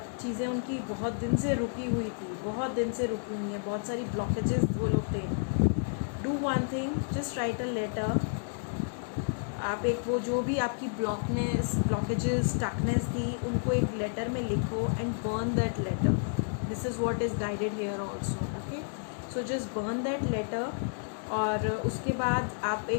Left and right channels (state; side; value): silent; right; digital silence